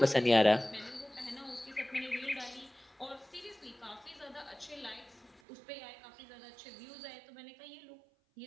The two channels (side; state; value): left; drops out; at 5.4 s